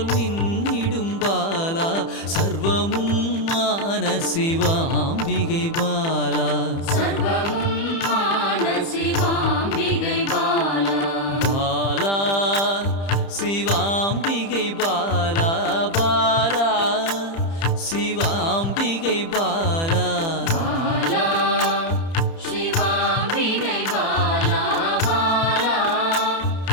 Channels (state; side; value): late; right; 30 ms